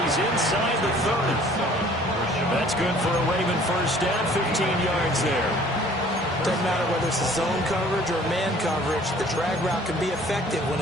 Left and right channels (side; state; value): both; normal; correlation 0.53